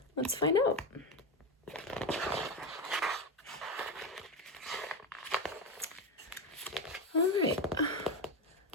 let's find out. All right.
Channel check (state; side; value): normal; both; correlation 0.15